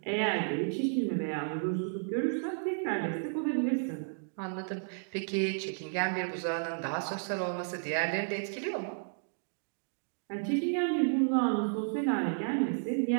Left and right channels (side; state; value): left; silent; digital silence